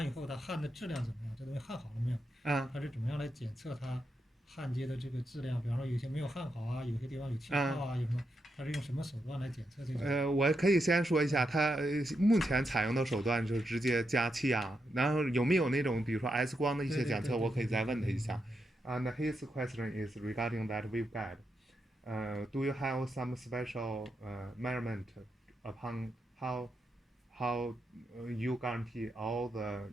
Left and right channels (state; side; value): normal; both; correlation 0.84